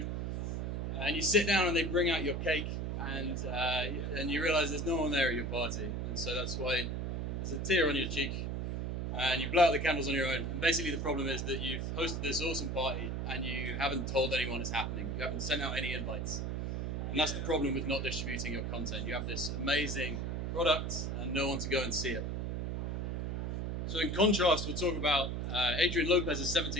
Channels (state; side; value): noise; right; hum, 2 dB below the sound